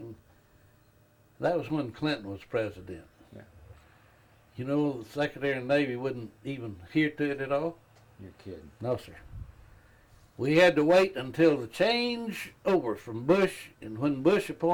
that was when Clinton was president. Yeah. You know, the Secretary of the Navy wouldn't even hear to it at all. You're kidding. No, sir. We had to wait until the change over from Bush, and when Bush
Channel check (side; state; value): both; identical; correlation 1.00